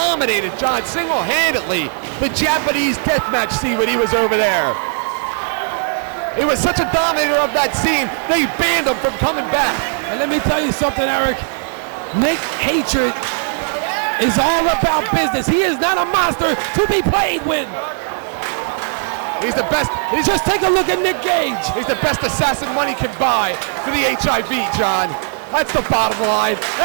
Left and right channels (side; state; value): left; silent; digital silence